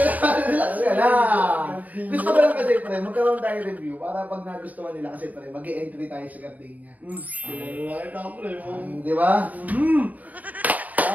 lang. Relax ka lang. Gusto ko lang kasi pre, magkaroon tayo review para pag nagustuhan nila kasi pre, mag-e-entry tayo sa Gardenia. Kailangan ka, pre. Di ba?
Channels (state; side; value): late; left; 0.075 ms